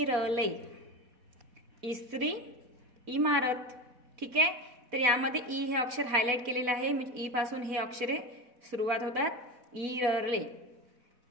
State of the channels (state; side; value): late; left; 4.1 ms